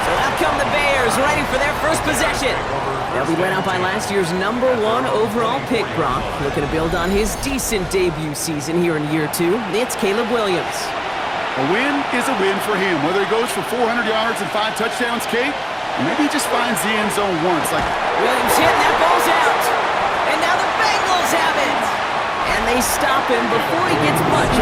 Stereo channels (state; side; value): identical; both; correlation 1.00